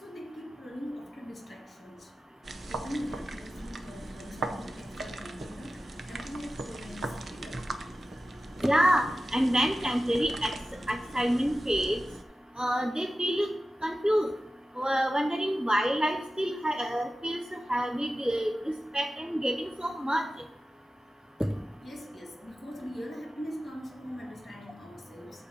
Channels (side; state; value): both; normal; correlation 0.94